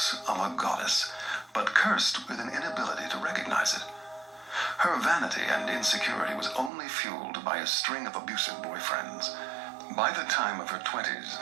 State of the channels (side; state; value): left; drops out; at 6.7 s